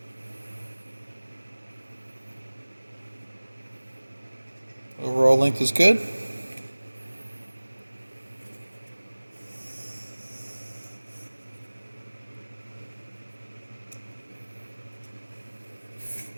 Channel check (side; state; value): both; inverted; correlation -1.00